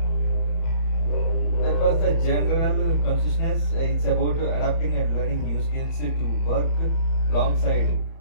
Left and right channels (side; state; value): right; late; 30 ms